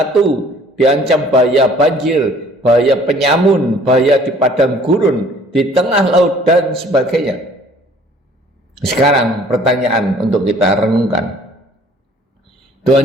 diancam bahaya banjir, bahaya penyamun, bahaya di padang gurun, di tengah laut dan sebagainya. Sekarang pertanyaan untuk kita renungkan.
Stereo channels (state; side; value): normal; both; correlation 0.55